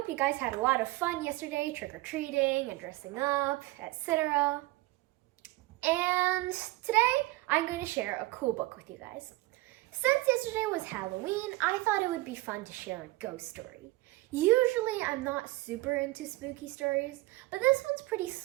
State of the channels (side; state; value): left; quieter; 19.9 dB